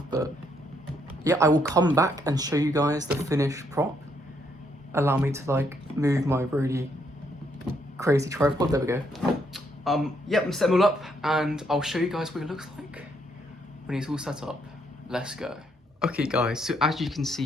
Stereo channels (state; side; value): normal; both; correlation 0.73